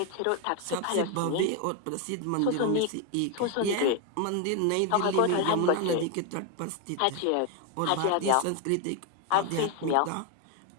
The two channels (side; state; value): both; different; correlation 0.01